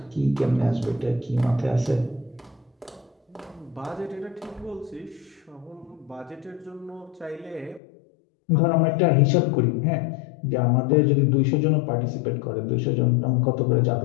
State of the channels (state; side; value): drops out; right; at 7.8 s